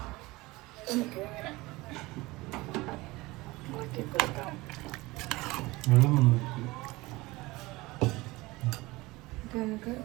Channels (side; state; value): left; quieter; 21.1 dB